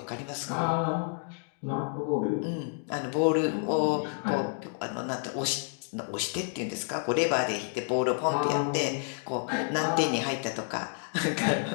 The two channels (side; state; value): right; silent; 58 dB below the other